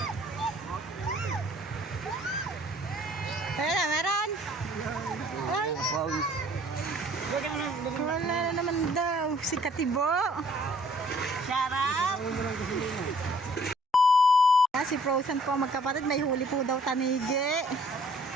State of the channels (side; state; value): both; normal; correlation 0.59